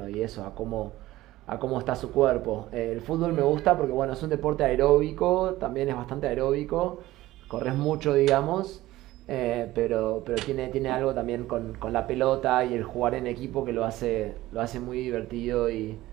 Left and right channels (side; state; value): left; quieter; 16.6 dB